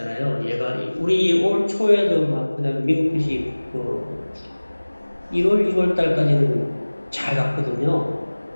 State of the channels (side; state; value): both; inverted; correlation -1.00